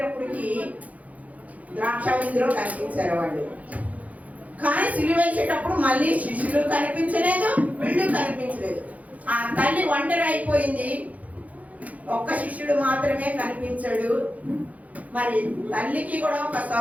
ద్రాక్ష విందులో కనిపించారు వాళ్ళు. కానీ సిలువేసేటప్పుడు మళ్ళీ శిష్యులు కనిపించలేదు, వీళ్ళు కనిపించలేదు. ఆ తల్లి ఒంటరి అయిపోయింది, ఒక్క శిష్యుడు మాత్రమే కనిపించాడు. మరి తల్లికి కూడా ఒక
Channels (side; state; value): left; late; 0.072 ms